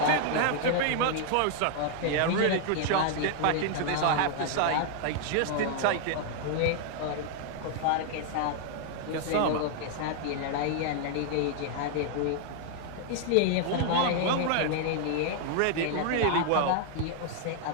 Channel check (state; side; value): different; both; correlation 0.00